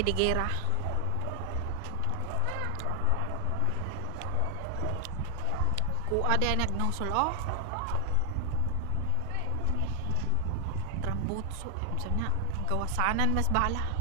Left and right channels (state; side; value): different; both; correlation 0.00